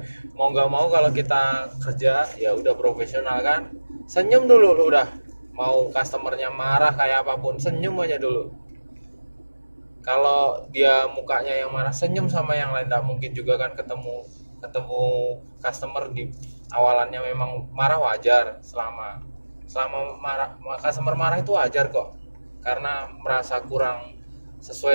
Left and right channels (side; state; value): both; inverted; correlation -1.00